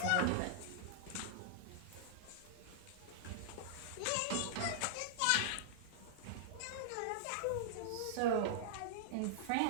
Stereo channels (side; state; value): both; different; correlation -0.01